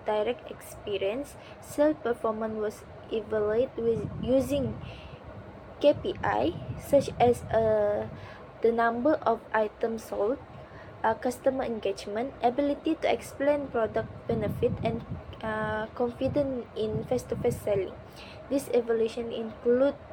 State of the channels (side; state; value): both; identical; correlation 1.00